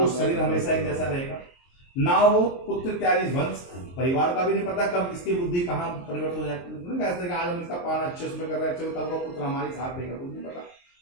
शरीर हमेशा एक जैसा रहेगा, ना वो पुत्र इत्यादि वंश परिवार का भी नहीं पता कब किसकी बुद्धि कहाँ परिवर्तन हो जाती है। कहते आज हम इसका पालन अच्छे उसमें कर रहे हैं, अच्छे कल को पुत्र हमारे साथ देगा, कुछ नहीं पता।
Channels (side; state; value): right; late; 23 ms